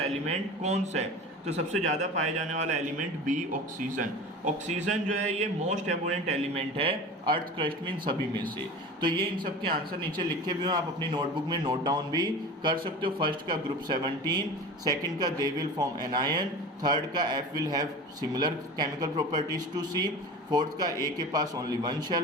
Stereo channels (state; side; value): normal; both; correlation 0.34